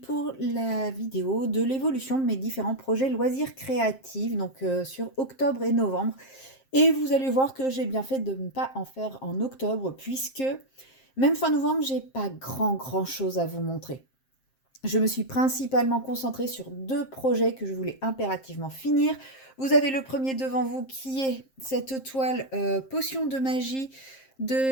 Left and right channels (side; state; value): right; late; 7.5 ms